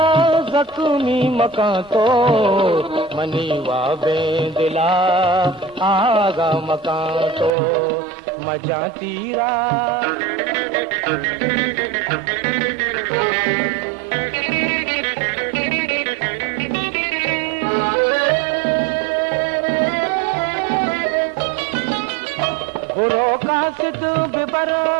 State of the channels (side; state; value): left; drops out; at 7.5 s